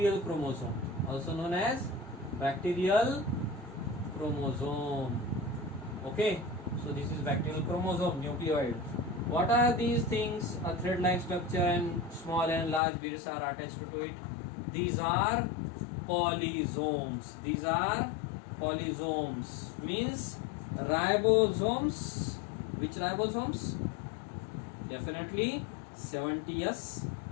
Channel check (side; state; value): right; drops out; at 12.8 s